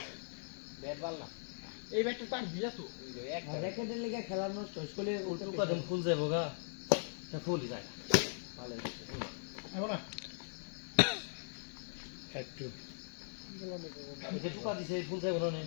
ব্যাট বাল না এই ব্যাটটা তার দিয়া তো একটা র্যাকেটের লেগে খেলা নষ্ট হইলে উল্টো কদম ফুল যাবো গা তা ফুলই যায় না ভালো আইবো না 5 2 যে টুকা দিছে ফুল যাবো না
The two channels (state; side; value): silent; right; digital silence